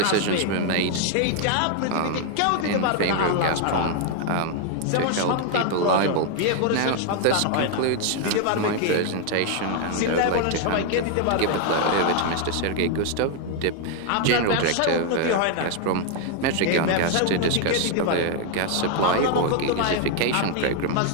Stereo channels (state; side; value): different; both; correlation 0.00